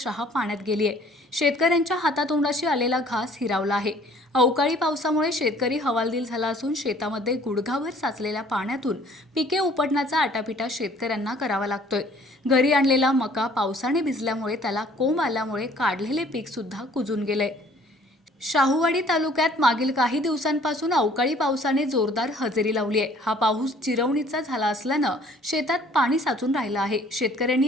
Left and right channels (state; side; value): normal; both; correlation 0.56